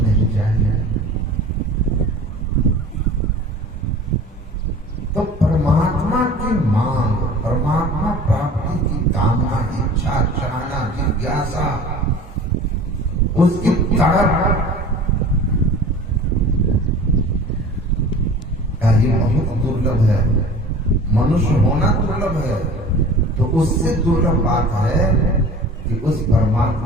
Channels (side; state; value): both; normal; correlation 0.42